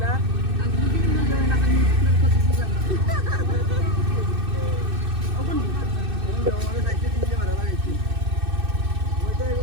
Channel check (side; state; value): left; late; 2.6 ms